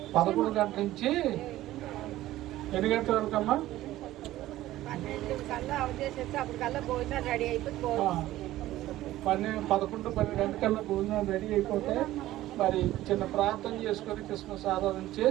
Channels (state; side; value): quieter; left; 15.2 dB